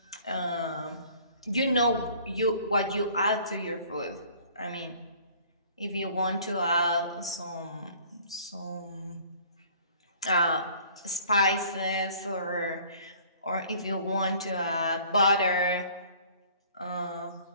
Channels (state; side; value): inverted; both; correlation -0.53